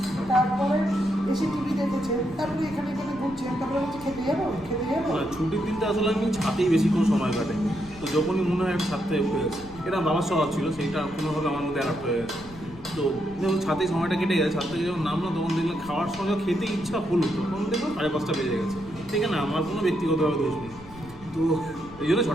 তারপরে এসে টিভি দেখেছে, তারপরে এখানে ঘুরছে, তারপরে হচ্ছে খেতে যাবো। ছুটির দিনটা আসলে আমি ছাদেই বেশিক্ষণ সময় কাটাই। তো যখনই মনে হয় ছাদটা উঠে গেছে, এটা বাবার স্বভাব ছিল, সেইটা কোনোভাবে আমার মধ্যে অ্যাডাপ্ট হয়ে গেছে। তো যখন ছাদে সময়টা কেটে গেছে, ছাদ থেকে যখন নামলো তখন দেখলাম খাওয়ার সময় খেতে ইচ্ছা হলো, তখন দেখলাম 5:30 বেজে গেছে। ঠিক আছে, আমার কোনো ব্যক্তিগতভাবে দোষ নেই, তো এই জন্য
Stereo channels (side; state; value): left; noise; rumble, 19 dB below the sound